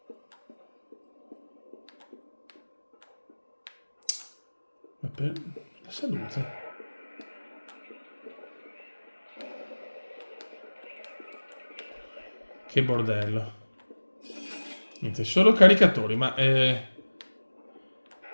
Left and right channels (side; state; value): both; inverted; correlation -1.00